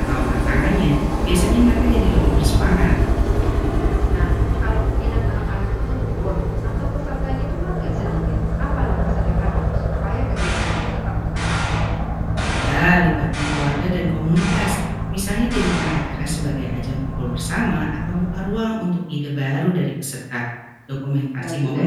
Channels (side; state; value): both; identical; correlation 1.00